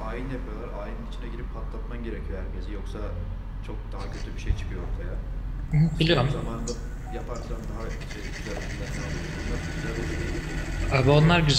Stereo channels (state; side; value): identical; both; correlation 1.00